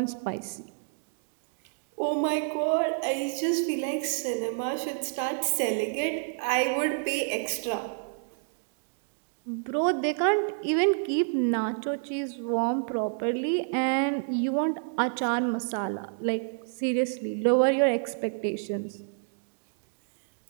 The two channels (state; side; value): silent; left; digital silence